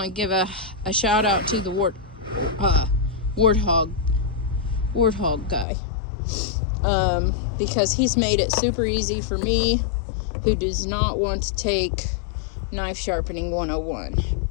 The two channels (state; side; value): drops out; right; at 5.7 s